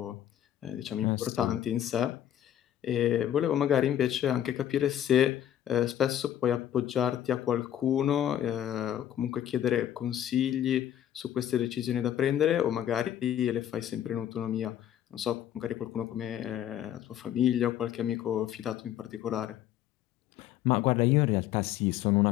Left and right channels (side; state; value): right; quieter; 11.1 dB